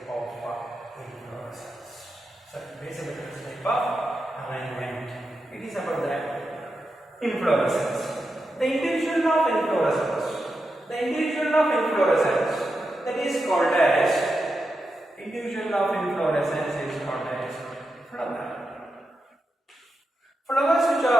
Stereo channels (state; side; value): normal; both; correlation 0.88